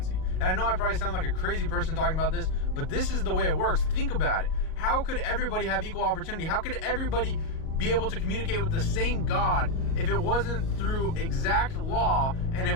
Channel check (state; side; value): late; right; 38 ms